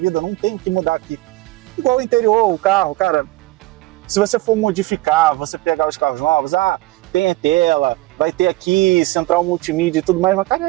Não tem o que mudar aqui. Igual o interior, o carro, cara, se você for modificar, você pegar os carros novos, tem a tela, vai ter aqui central multimídia e tudo mais, mas, cara,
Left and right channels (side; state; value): left; quieter; 19.6 dB